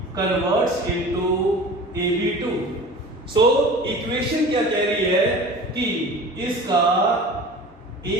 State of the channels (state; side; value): normal; both; correlation 0.39